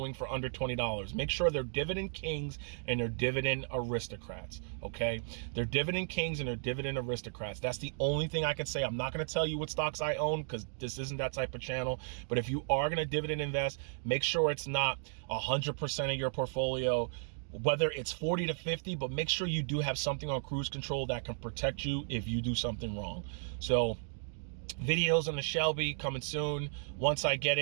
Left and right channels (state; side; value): silent; left; digital silence